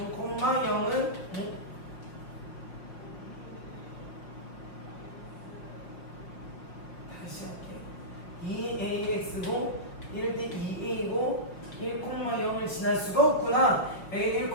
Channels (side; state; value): right; late; 5.5 ms